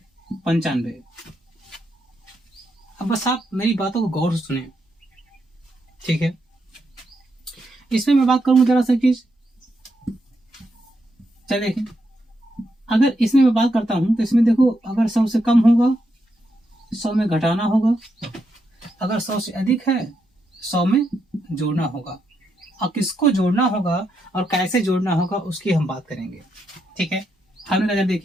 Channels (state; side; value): normal; both; correlation 0.81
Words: 95। अब बस आप मेरी बातों को गौर से सुने। ठीक है, इसमें मैं बात करूंगा जरा सा चीज। चलिए देखिए, अगर इसमें मैं बात करता हूं तो इसमें देखो, अगर 100 से कम होगा 100 में घटाना होगा, अगर 100 से अधिक है 100 में जोड़ना होगा। और किसको जोड़ना होगा और कैसे जोड़ना होगा उसकी हम बात करेंगे। ठीक है, हमने नजर